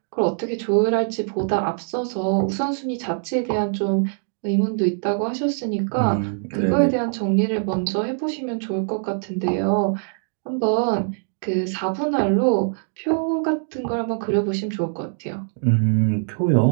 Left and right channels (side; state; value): left; silent; digital silence